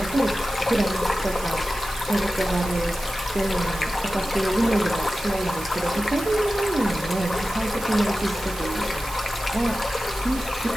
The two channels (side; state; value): right; noise; hiss, 13 dB below the sound